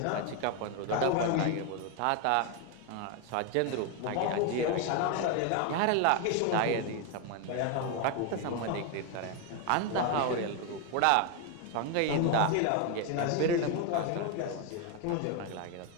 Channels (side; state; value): both; different; correlation 0.01